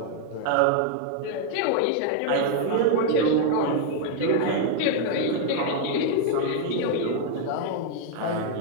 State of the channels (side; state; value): both; different; correlation 0.00